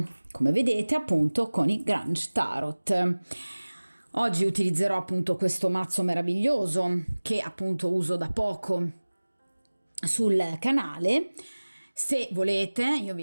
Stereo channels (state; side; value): inverted; both; correlation -1.00